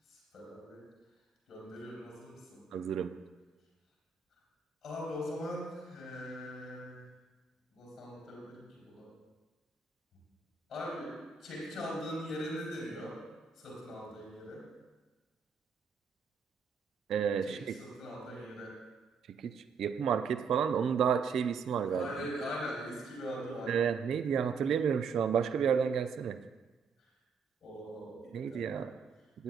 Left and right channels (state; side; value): quieter; left; 5.6 dB